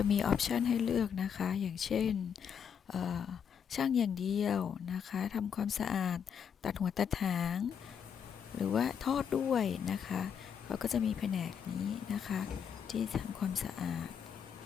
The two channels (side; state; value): right; quieter; 7.6 dB